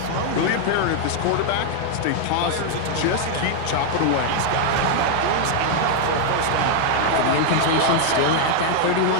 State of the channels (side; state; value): both; different; correlation 0.00